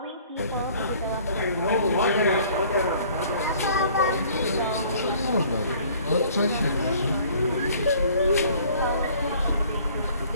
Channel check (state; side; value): inverted; both; correlation -0.55